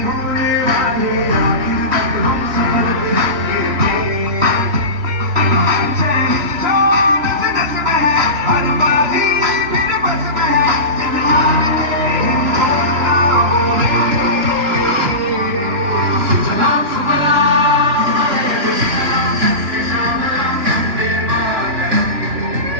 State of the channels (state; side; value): late; left; 3.0 ms